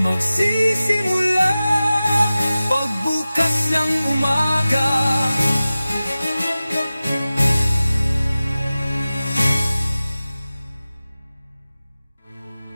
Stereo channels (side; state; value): both; inverted; correlation -0.96